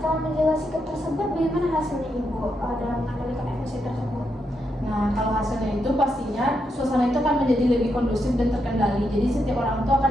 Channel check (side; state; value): both; normal; correlation 0.82